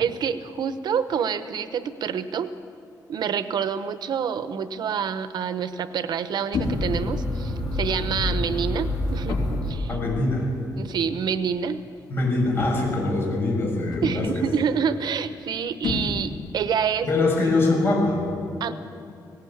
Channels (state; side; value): normal; both; correlation 0.61